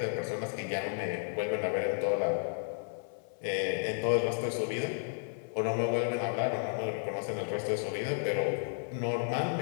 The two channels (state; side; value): silent; right; 56 dB below the other